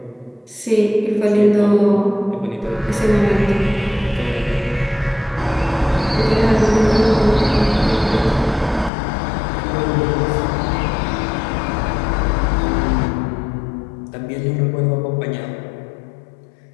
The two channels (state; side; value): drops out; right; at 8.9 s